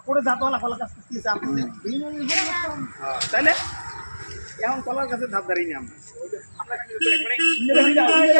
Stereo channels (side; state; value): both; inverted; correlation -1.00